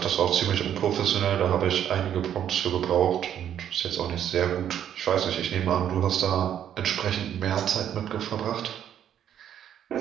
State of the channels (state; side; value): quieter; left; 9.9 dB